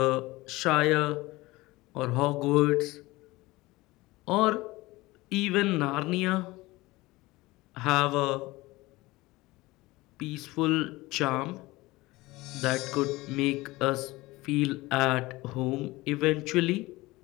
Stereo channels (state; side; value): quieter; right; 20.4 dB